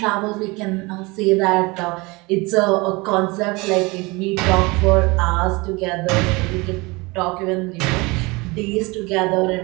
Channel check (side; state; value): left; quieter; 24.8 dB